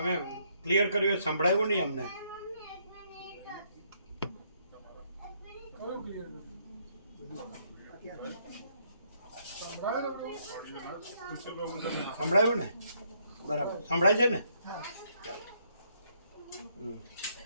ક્લિયર કર્યું? સંભળાયું નહીં અમને? કયું ક્લિયર સંભળાયું ને? બરાબર સંભળાય છે ને?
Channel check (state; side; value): inverted; both; correlation -0.71